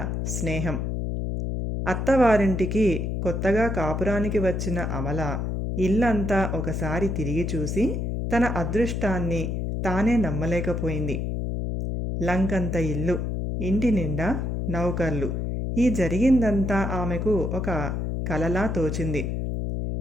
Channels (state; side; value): noise; left; hum, 2 dB below the sound